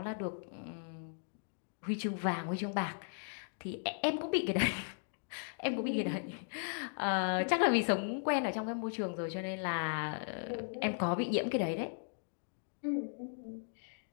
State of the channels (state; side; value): silent; right; digital silence